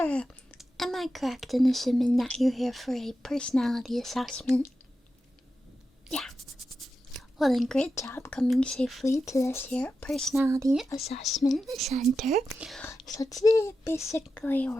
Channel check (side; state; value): both; normal; correlation 0.90